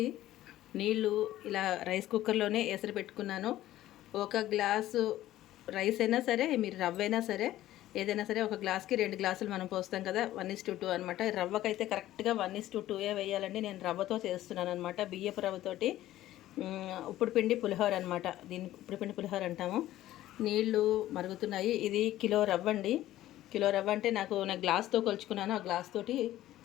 నీళ్ళు ఇలా రైస్ కుక్కర్లోనే ఎసరు పెట్టుకున్నాను. ఒక గ్లాసు రైస్ అయినా సరే, మీరు రవ్వ అయినా సరే, ఏదైనా సరే ఒక గ్లాస్కి 2 గ్లాసులు మనం పోస్తాం కదా, 1:2 అనమాట. రవ్వకైతే కరెక్ట్గా 1:2 వేయాలండి. నేను రవ్వతో చేస్తున్నాను అనమాట, బియ్యపు రవ్వతోటి. ఉప్పుడు పిండి పులిహోర అనమాట. దీన్ని ఉప్పుడు పిండి పులిహోర అంటాము. నీళ్ళు మరుగుతున్నాయి. ఇది కిలో రవ్వ అండి. కిలో రవ్వ అంటే నాకు గ్లాస్తో కొలుచుకున్నాను. ఆ గ్లాస్ తోటి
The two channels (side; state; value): right; quieter; 14.3 dB